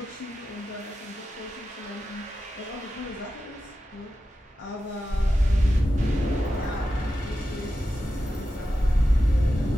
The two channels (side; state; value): both; normal; correlation 0.91